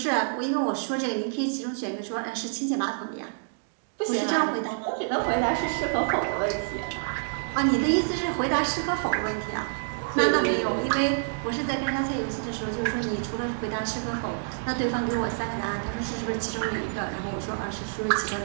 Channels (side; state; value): left; silent; digital silence